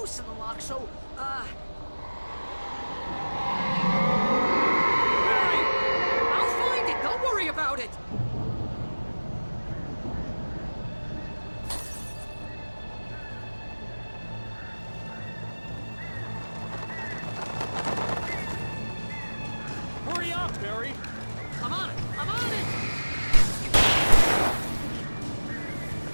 in the lock, so, Barry! I'll find it, don't worry about it! Hurry up, Barry! I'm on it! I'm on it!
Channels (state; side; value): inverted; both; correlation -1.00